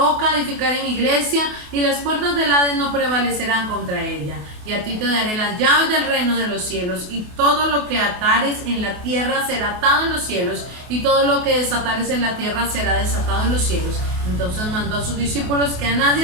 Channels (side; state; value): left; late; 28 ms